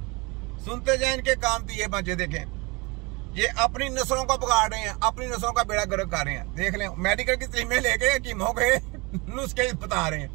सुनते जाएं इनके काम की ये बातें। देखें, ये अपनी नस्लों को बिगाड़ रहे हैं, अपनी नस्लों का बेड़ा गर्क कर रहे हैं। देख लें, मेडिकल की तलीमें लेके हकीमों के नुस्खे बता रहे हैं।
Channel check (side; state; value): left; quieter; 27.0 dB